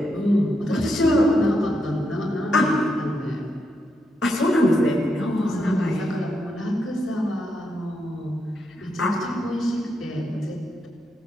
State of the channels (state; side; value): normal; both; correlation 0.82